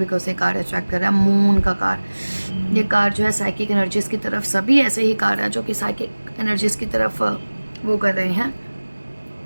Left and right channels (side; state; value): both; inverted; correlation -1.00